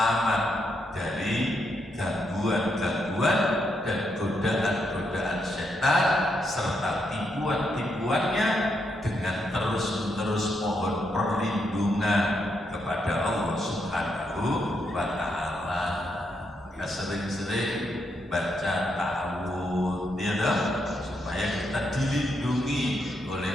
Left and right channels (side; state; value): both; normal; correlation 0.80